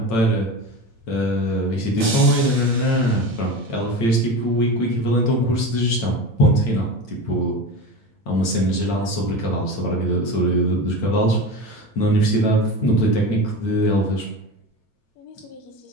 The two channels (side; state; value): right; late; 8.8 ms